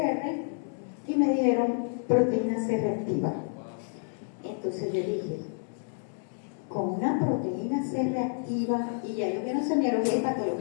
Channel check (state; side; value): silent; right; 58 dB below the other